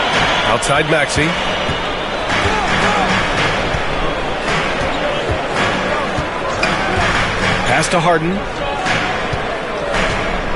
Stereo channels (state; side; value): identical; both; correlation 1.00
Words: Outside Maxey. Pass to Harden.